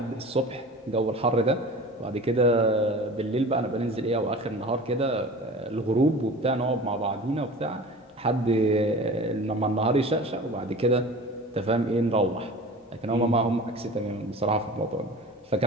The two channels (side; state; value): both; normal; correlation 0.38